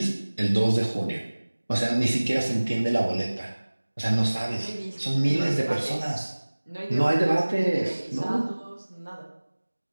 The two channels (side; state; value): both; inverted; correlation -1.00